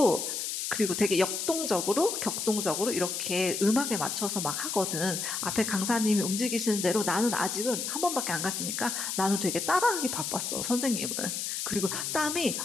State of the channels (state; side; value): noise; left; hiss, 3 dB below the sound